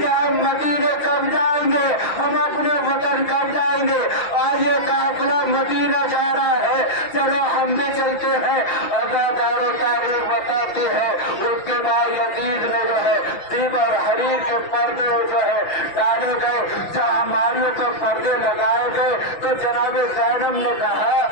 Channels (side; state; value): right; late; 5.9 ms